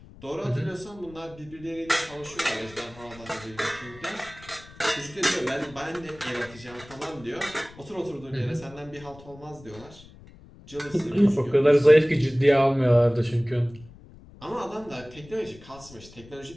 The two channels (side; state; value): left; noise; rumble, 21 dB below the sound